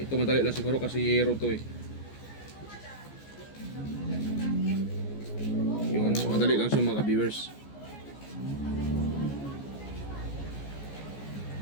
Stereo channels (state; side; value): late; right; 14 ms